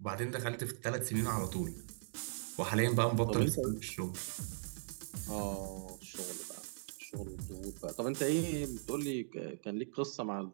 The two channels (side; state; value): left; silent; digital silence